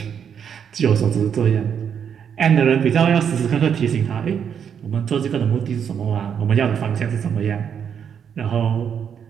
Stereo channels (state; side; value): quieter; left; 7.8 dB